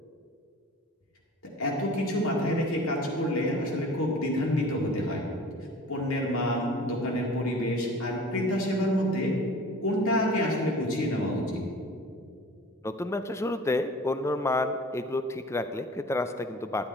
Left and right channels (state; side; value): normal; both; correlation 0.43